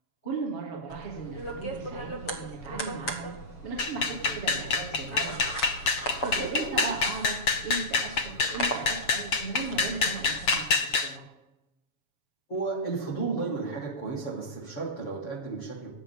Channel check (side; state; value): right; late; 7.2 ms